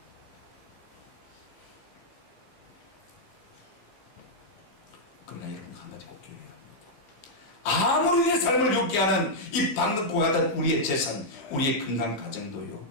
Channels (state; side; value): late; right; 15 ms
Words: 그러나 여러분 한 가지 꼭 기억해야 합니다. 아무리 내 삶을 욕게 하는 이 방긋고 같은 우리의 재산, 우리의 건강 가정도요,